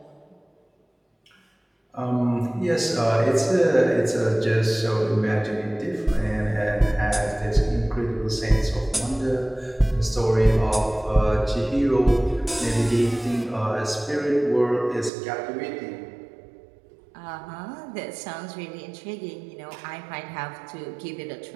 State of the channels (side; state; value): left; drops out; at 15.1 s